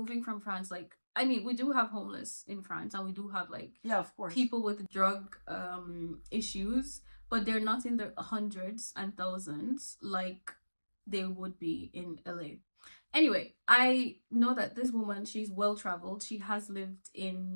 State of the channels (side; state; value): both; inverted; correlation -1.00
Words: from France, like, I mean, we do have homeless in France, and we do have like of course, people with drug issues, but they're not in the hundreds and thousands like they would be in LA. Anyway, I know that this woman, she's well traveled. She has lived